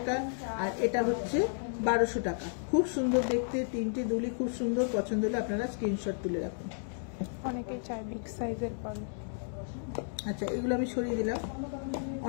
আর এটা হচ্ছে 1200 টাকা। খুব সুন্দর দেখতে, তিনটে দুলি খুব সুন্দর। পছন্দ হলে আপনারা স্ক্রিনশট তুলে রাখুন। অনেকেই চায় বিগ সাইজের পার্ল। আচ্ছা, এগুলো আমি সরিয়ে দিলাম।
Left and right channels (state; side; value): silent; right; digital silence